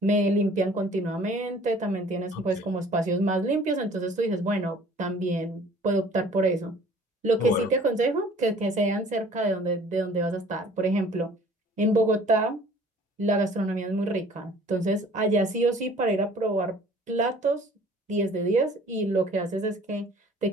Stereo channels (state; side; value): normal; both; correlation 0.51